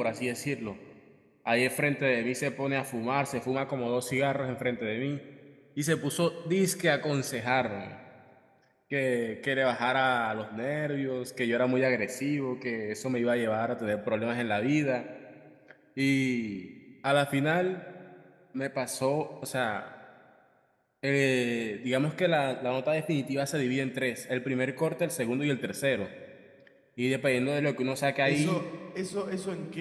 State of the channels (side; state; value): both; identical; correlation 1.00